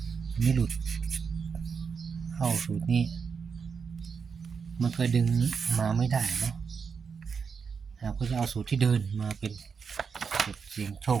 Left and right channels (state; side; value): quieter; left; 5.9 dB